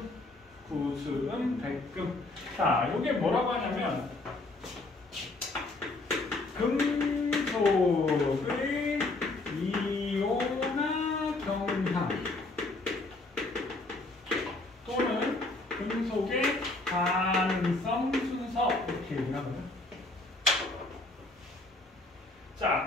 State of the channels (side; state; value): right; quieter; 3.0 dB